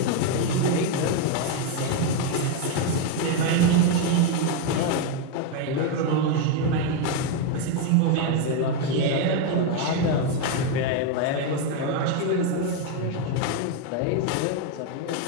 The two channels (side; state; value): both; different; correlation 0.02